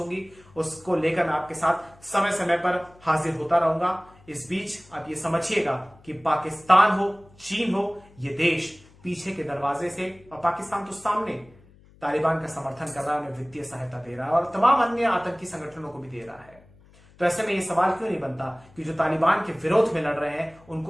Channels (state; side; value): noise; left; hum, 26 dB below the sound